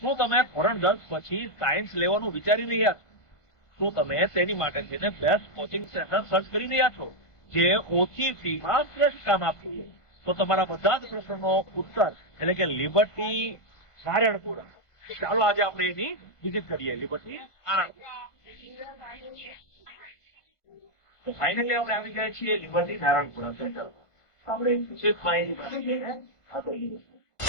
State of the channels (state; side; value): late; right; 1.5 ms